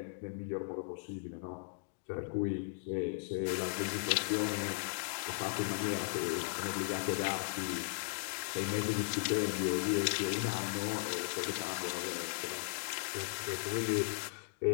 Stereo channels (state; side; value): silent; right; digital silence